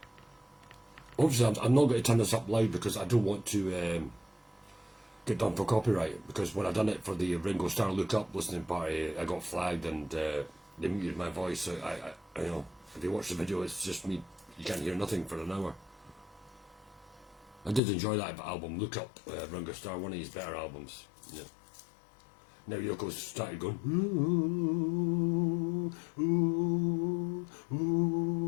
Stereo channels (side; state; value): right; drops out; at 17.8 s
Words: Obviously, I'm not going to turn this up loud because I don't want to get done for copyright. Because when I done it for the Ringo Starr Look Up listening party, I got flagged and they muted my voice. So I you know, if you watch the video, it's just me. You can't hear nothing for an hour. I did enjoy that album, Look Up, Ringo Starr, one of his better albums. Yeah. Now Yoko's started going, ooh, ooh,